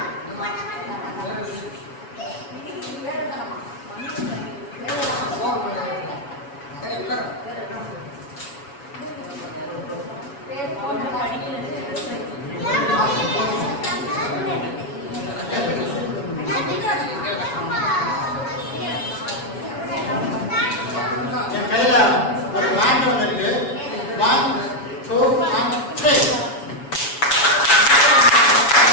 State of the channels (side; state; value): right; late; 7.1 ms